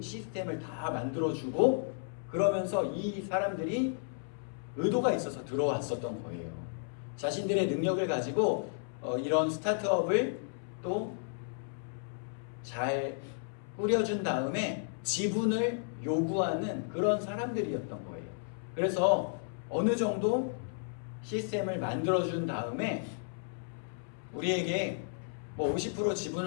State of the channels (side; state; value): right; silent; 56 dB below the other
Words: 시스템을 다 만들어주고 그러면서 이 사람들이 의도가 있어서 들어왔었던 거예요. 자신들의 능력을 가지고 이런 스타트업을 또 잘 꾸려준 다음에 지분을 요구하는 그런 사람들이었던 거예요. 그래서 어느 정도 시스템을 만들어준 다음에 우리에게 50%